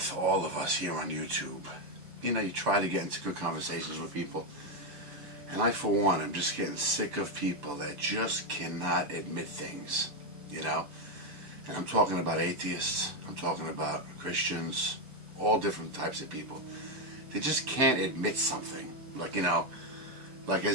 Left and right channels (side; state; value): left; late; 6.8 ms